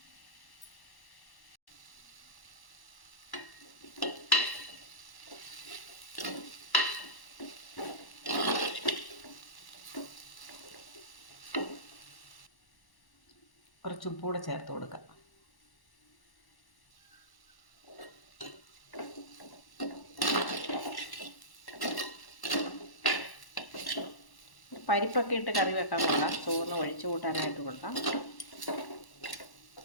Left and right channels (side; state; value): right; late; 1.1 ms